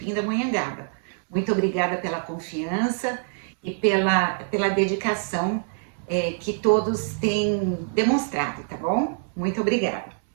Muito obrigada pela confiança e pela dedicação que todos têm demonstrado, tá bom? Muito obrigada.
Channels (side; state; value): left; silent; 62 dB below the other